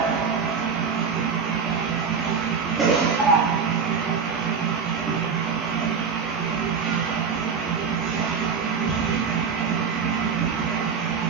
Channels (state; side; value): quieter; left; 5.9 dB